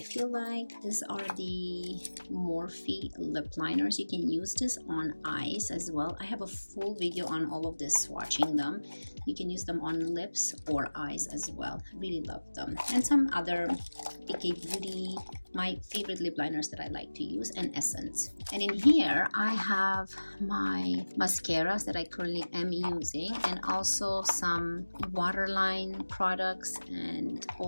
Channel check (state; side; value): inverted; both; correlation -1.00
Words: feel like. These are the Morphe lip liners. You can use this on eyes as well. I have a full video on all of this, swatching them. You can use them on lips or eyes as well. Really love them. And some other Ikea Beauty, my favorite lip liners that I like to use, and Essence. And in here I have my mascaras that I currently am using, and also some waterline products and